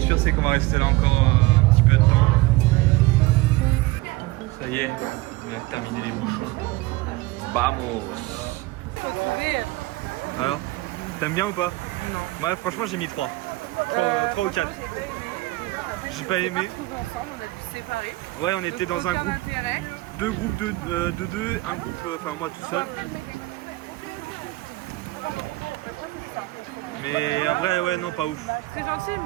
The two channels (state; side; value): quieter; left; 20.3 dB